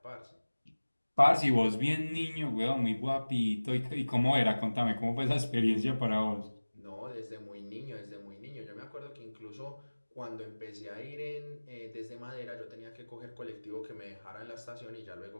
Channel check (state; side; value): inverted; both; correlation -1.00